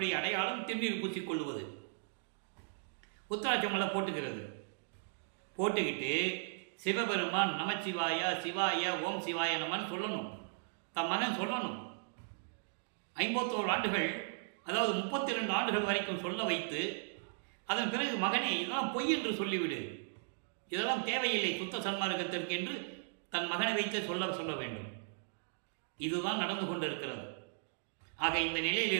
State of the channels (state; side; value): silent; left; digital silence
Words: அடையாளம் திருநீர் பூசிக்கொள்வது. உத்தராட்சமலை போட்டுக்கிறது. போட்டுக்கிட்டு சிவபெருமான் நமச்சிவாய சிவாய ஓம் சிவாய நமன் சொல்லணும். தன் மகன் சொல்லணும். 51 ஆண்டுகள், அதாவது 32 ஆண்டுகள் வரைக்கும் சொல்ல வைத்து அதன் பிறகு மகனே இதெல்லாம் பொய் என்று சொல்லிவிடு, இதெல்லாம் தேவையில்லை சுத்த சன்மார்க்கத்திற்கு என்று தன் மகனை வைத்து சொல்ல வேண்டும். இதுதான் நடந்து கொண்டிருக்கிறது. ஆக இந்த நிலையில்